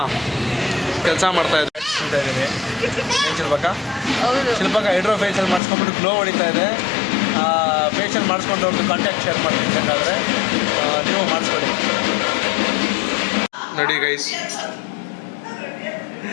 ಕೆಲಸ ಮಾಡ್ತಾ ಇದ್ದಾರೆ ಅಂತ ಇದ್ದೀರಿ. ಏನು ಶಿಲ್ಪಕ್ಕ? ಶಿಲ್ಪಕ್ಕ ಹೈಡ್ರೋ ಫೇಶಿಯಲ್ ಮಾಡಿಸ್ಕೊಂಡ್ಬಿಟ್ಟು ಗ್ಲೋ ಹೊಡಿತಾ ಇದೆ. ಫೇಶಿಯಲ್ ಮಾಡಿಸ್ಕೊಂಡು ಅವ್ರದ್ದು ಕಾಂಟ್ಯಾಕ್ಟ್ ಶೇರ್ ಮಾಡ್ತೀನಿ, ಬೇಕಾದರೆ ನೀವು ಮಾಡಿಸ್ಕೊಳ್ಳಿ. ನೋಡಿ ಗೈಸ್,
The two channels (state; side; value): drops out; right; at 5.6 s